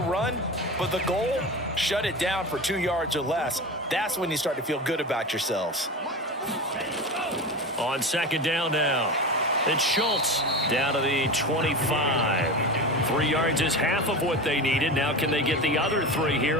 but the goal, shut it down for 2 yards or less. That's when you start to feel good about yourselves. On 2nd down now, it's Schultz down to the 25. 3 yards is half of what they needed. Now can they get the other 3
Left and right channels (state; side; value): normal; both; correlation 0.26